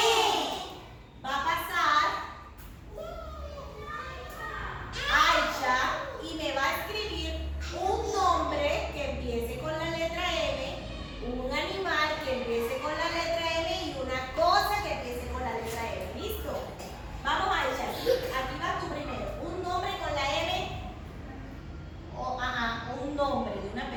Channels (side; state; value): both; identical; correlation 1.00